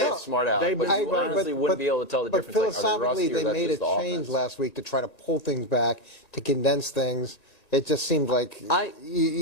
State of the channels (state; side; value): late; right; 1.8 ms